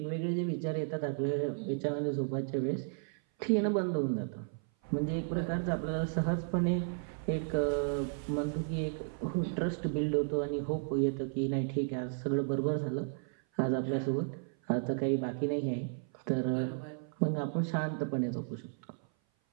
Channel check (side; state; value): left; silent; 55 dB below the other